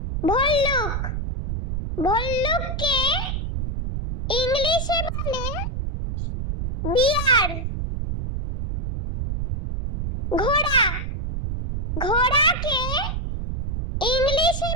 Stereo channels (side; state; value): right; noise; rumble, 3 dB below the sound